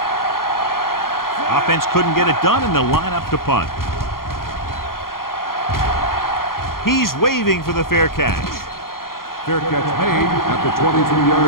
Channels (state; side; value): late; right; 0.92 ms